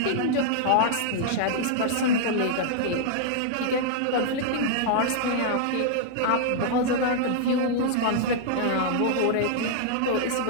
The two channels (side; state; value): both; different; correlation -0.01